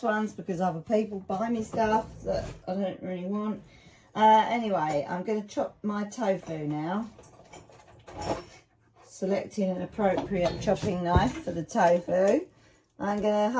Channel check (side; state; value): both; identical; correlation 1.00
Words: ones because other people buy me stuff that I don't really want. Anyway, I'm going to chop my tofu now. Selecting an appropriate chopping knife for the tofu. I'm going to